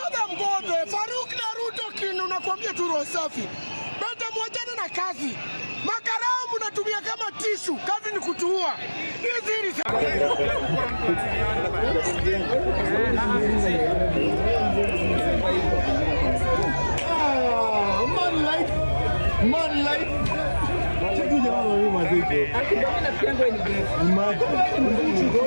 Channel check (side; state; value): both; inverted; correlation -1.00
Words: Mbodo, Faruq na Ruto kinu nakwambia tu roho safi. Beta mwachane na kazi. Makarao mnatumia kama tishu, kazi ni kutuua. Hizi ni man life. Check you jamaa wewe mazee. Akidona piango ni best. Imagine. Go